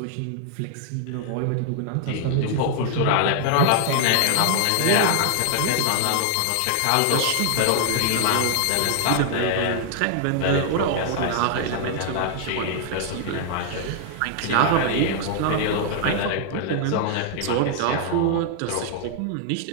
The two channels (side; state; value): both; different; correlation 0.00